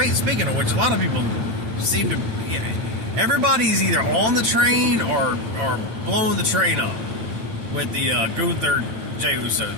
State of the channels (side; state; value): left; late; 9.1 ms